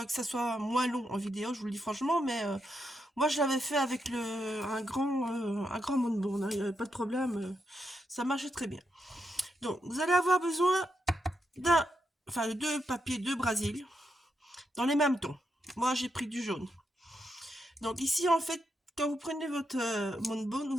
ça soit moins long en vidéo, je vous le dis franchement, mais moi je l'avais fait avec un grand moonboard, hein, il n'y avait pas de problème, ça marchait très bien. Donc, vous allez avoir besoin de deux papiers de Brésil, dans les mêmes tons. Moi j'ai pris du jaune. Donc ici en fait, quand vous prenez votre moonboard,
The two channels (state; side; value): normal; both; correlation 0.83